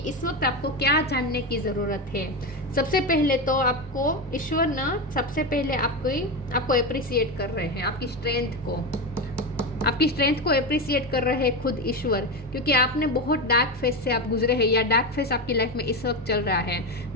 इस वक्त आपको क्या जानने की ज़रूरत है। सबसे पहले तो आपको ईश्वर ना सबसे पहले आपको अप्रिसिएट कर रहे हैं, आपकी स्ट्रेंथ को अप्रिसिएट कर रहे हैं खुद ईश्वर, क्योंकि आपने बहुत डार्क फेस से आप गुजरे हैं, या डार्क फेस आपकी लाइफ में इस वक्त चल रहा है।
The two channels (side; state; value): both; normal; correlation 0.16